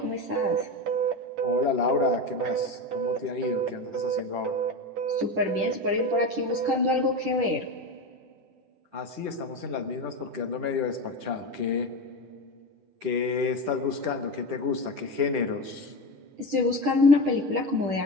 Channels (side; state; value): left; late; 10 ms